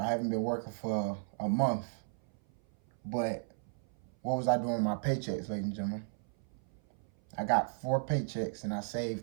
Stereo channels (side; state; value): left; silent; 54 dB below the other